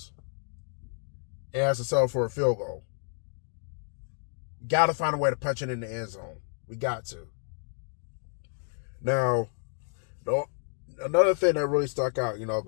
and has to settle for a field goal. Got to find a way to punch it in the end zone. We got to. Now, another thing that really stuck out,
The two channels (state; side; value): silent; right; 58 dB below the other